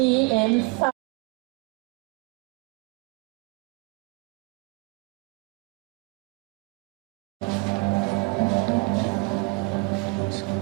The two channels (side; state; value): left; quieter; 27.5 dB